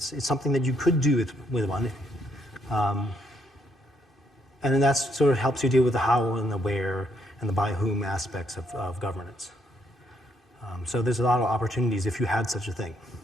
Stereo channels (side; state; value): both; normal; correlation 0.72